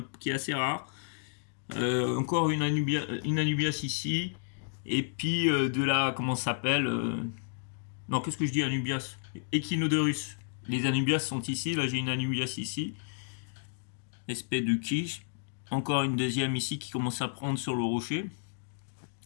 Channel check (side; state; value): right; silent; digital silence